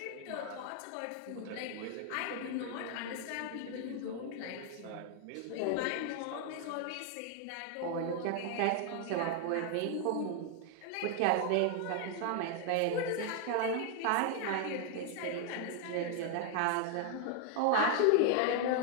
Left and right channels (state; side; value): different; both; correlation 0.00